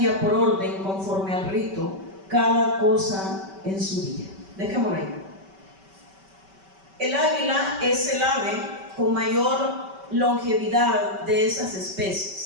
por orden, conforme al rito, cada cosa en su día. Dejémoslo ahí. El águila es el ave con mayor longevidad de esas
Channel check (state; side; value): late; left; 5.2 ms